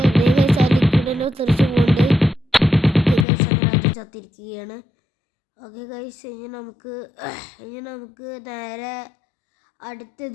ദേ ഗൈസ്, ആ ലിക്വിഡിനെ തെറിച്ച് പോകുന്നുണ്ട്. ഓക്കെ ഗൈസ്, അങ്ങനെ അത് ചത്തിരിക്കുകയാണ്. ഓക്കെ ഗൈസ്, ഇനി നമുക്ക് നേരെ അടുത്ത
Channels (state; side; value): drops out; right; at 3.2 s